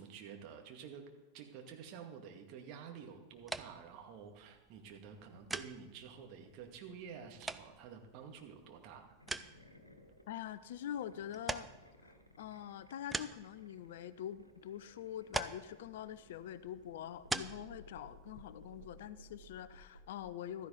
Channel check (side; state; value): both; normal; correlation 0.22